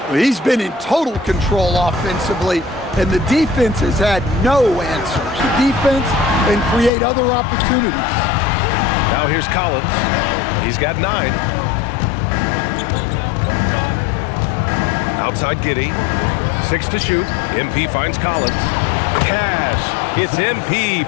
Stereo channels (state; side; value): drops out; right; at 6.9 s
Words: He's been in total control offensively, and the defense has had no answers. The defense and create other opportunities. Now here's Collins. He's got 9. Outside Giddy. 6 to shoot. MP finds Collins. Cash. It's MP